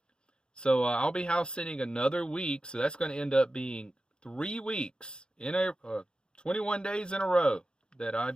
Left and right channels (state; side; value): late; right; 0.049 ms